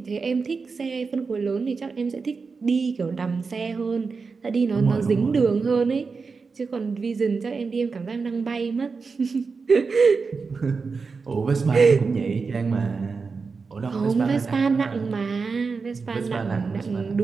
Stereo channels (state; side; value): quieter; left; 4.7 dB